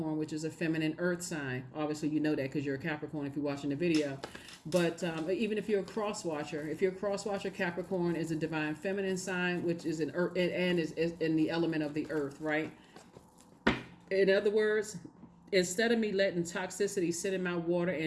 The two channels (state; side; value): identical; both; correlation 1.00